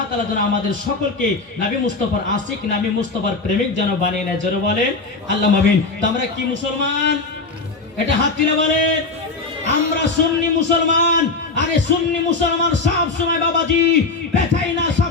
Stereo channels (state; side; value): quieter; right; 3.8 dB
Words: তাআলা যেন আমাদের সকলকে নবী মুস্তাফার আশিক, নবী মুস্তাফার প্রেমিক যেন বানিয়ে নেয়। জোরে বলেন আল্লাহুম্মা আমিন। তো আমরা কি মুসলমান? এটা হাত তুলে বলেন, আমরা সুন্নি মুসলমান। আরে সুন্নি মুসলমান সব সময় বাবাজি পেছাই না,